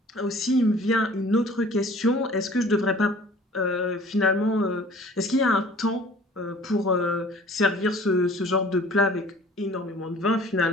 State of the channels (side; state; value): both; normal; correlation 0.49